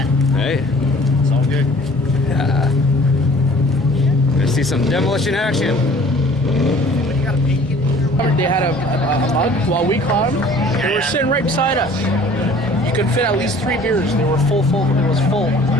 Hey. It's all good. Yeah. Gonna see some demolition action. They had a mug while we caught them. They were sitting right beside us. You could fit at least 3 beers. They were full. It was full.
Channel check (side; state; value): both; normal; correlation 0.51